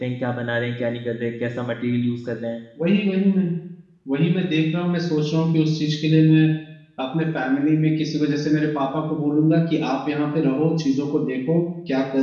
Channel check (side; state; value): both; identical; correlation 1.00